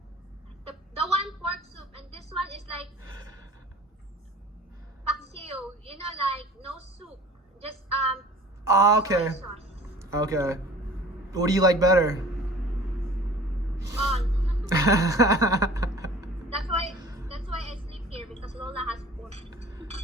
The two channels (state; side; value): normal; both; correlation 0.45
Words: The one pork soup, and this one is like paksiw. You know, like no soup, just Oh, okay. soy sauce. Okay. What do you like better? On. That's why I sleep here, because Lola has pork.